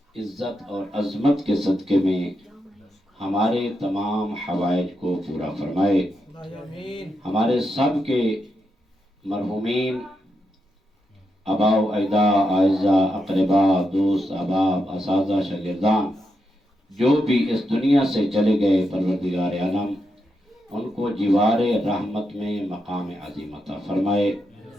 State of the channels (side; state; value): both; normal; correlation 0.84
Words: عزت اور عظمت کے صدقے میں ہمارے تمام حوائج کو پورا فرمائے. آمین. ہمارے سب کے مرحومین آبا و اجداد، اعزاء، اقربا، دوست، احباب، اساتذہ، شاگردان جو بھی اس دنیا سے چلے گئے، پروردگار عالم ان کو جوار رحمت میں مقام عظیم عطا فرمائے،